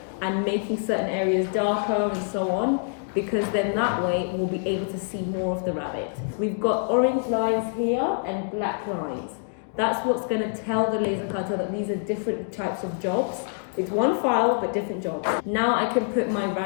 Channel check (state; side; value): silent; right; digital silence